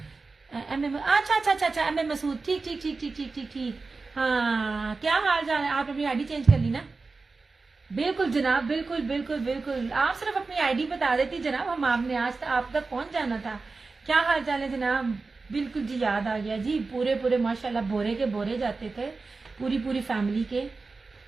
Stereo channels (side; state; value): left; quieter; 4.0 dB